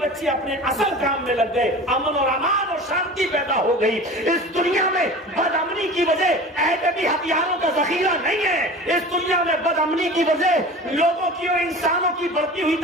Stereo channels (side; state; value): both; normal; correlation 0.37